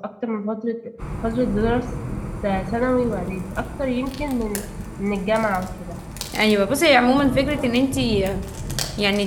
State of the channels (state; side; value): identical; both; correlation 1.00